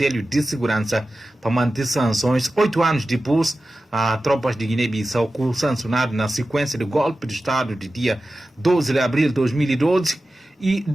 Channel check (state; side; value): normal; both; correlation 0.94